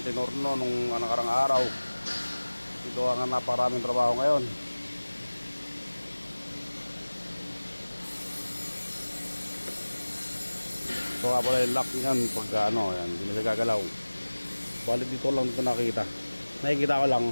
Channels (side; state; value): both; inverted; correlation -1.00